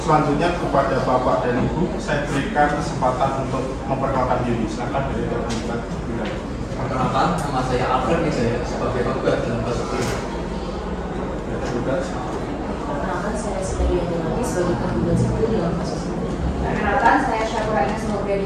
Selanjutnya kepada Bapak dan Ibu saya berikan kesempatan untuk memperkenalkan diri. Silakan dari tergugat. Perkenalkan, nama saya Alfred Wijaya sebagai penggugat dalam kasus ini. Perkenalkan, saya Siti Yanti sebagai tergugat satu dalam kasus ini. Perkenalkan, saya Syakura Ines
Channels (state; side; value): identical; both; correlation 1.00